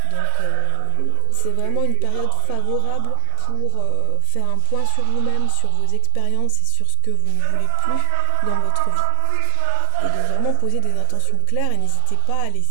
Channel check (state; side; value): different; both; correlation 0.00